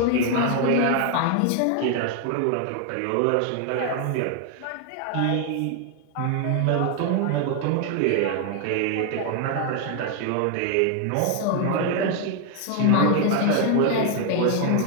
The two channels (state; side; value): different; both; correlation 0.00